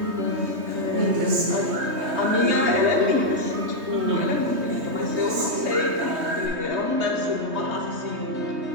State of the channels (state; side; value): late; left; 3.2 ms